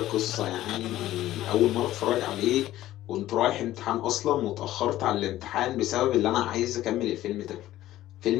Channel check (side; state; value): right; quieter; 14.5 dB